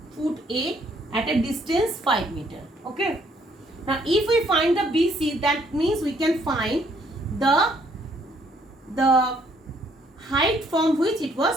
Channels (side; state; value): both; normal; correlation 0.66